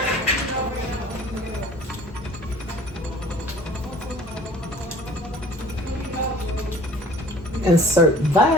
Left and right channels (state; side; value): normal; both; correlation 0.49